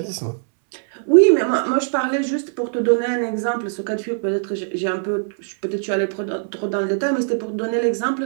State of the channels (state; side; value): silent; left; 65 dB below the other